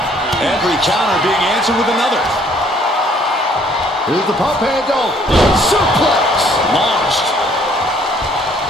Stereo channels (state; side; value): normal; both; correlation 0.62